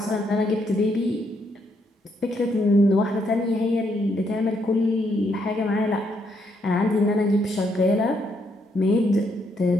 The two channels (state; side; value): normal; both; correlation 0.75